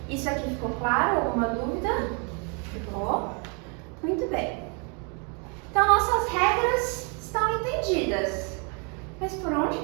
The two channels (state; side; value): quieter; left; 35.6 dB